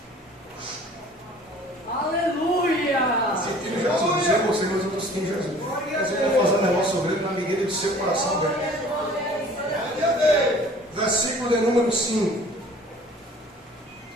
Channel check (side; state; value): both; normal; correlation 0.49